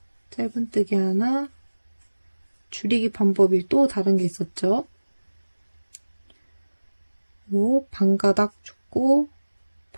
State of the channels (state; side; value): inverted; both; correlation -1.00